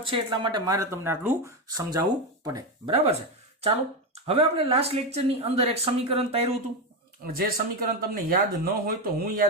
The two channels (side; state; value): both; normal; correlation 0.12